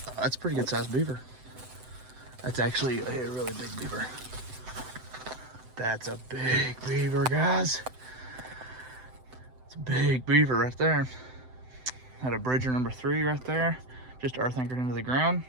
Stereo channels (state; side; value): late; left; 7.8 ms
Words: That's a pretty good sized beaver. That's actually a really big beaver. That's a big beaver, guys. It's a big beaver right there. Had a bridger number 3 right there, just earth anchored into the ground.